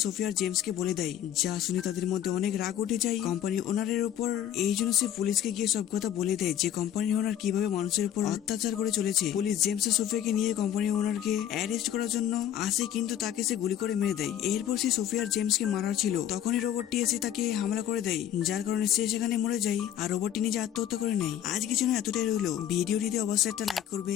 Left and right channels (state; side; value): quieter; right; 10.6 dB